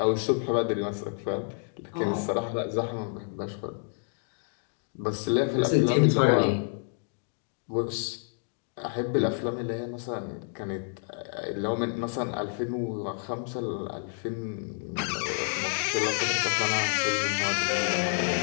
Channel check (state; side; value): silent; right; 59 dB below the other